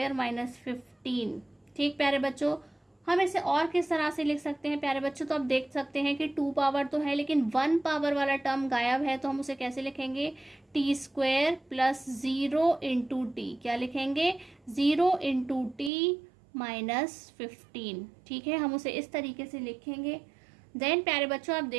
माइनस 15। ठीक प्यारे बच्चों, हम इसे और किस तरह से लिख सकते हैं प्यारे बच्चों, तो आप देख सकते हैं कि 2 पावर तो है लेकिन 1 पावर वाला टर्म गायब है, तो हम उसे कैसे लिखेंगे, T square plus 0 into T. क्या लिखेंगे, 0 इंटू टी माइनस 15। ठीक है, हम उसे इस तरीके से लिखेंगे। देन प्यारे बच्चों, आप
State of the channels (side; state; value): left; drops out; at 15.9 s